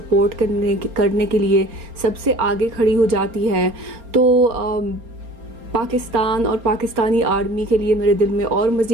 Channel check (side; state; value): left; late; 4.3 ms